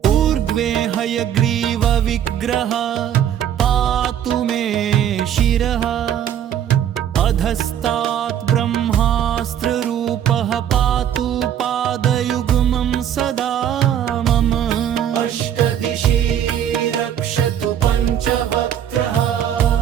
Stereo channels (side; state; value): left; quieter; 9.9 dB